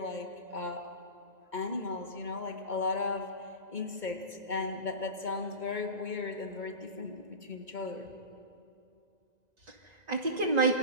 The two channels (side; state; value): left; late; 1.9 ms